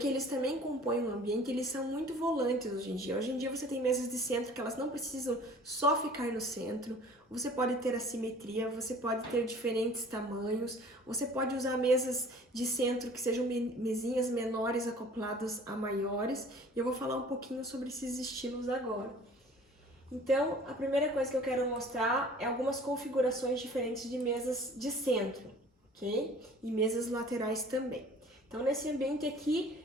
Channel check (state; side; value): normal; both; correlation 0.48